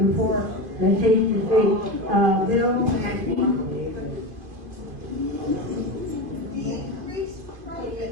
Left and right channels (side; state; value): left; late; 2.5 ms